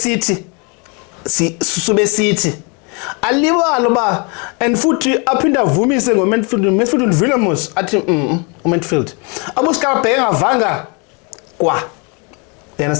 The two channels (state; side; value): quieter; right; 33.0 dB